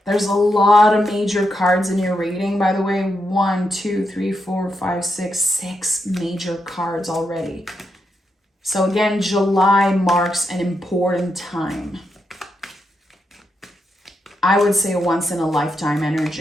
There's a lot of major cards in your reading, by the way. 1, 2, 3, 4, 5, 6 major cards already. So again, July marks an important time. I would say a once in a lifetime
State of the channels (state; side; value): normal; both; correlation 0.83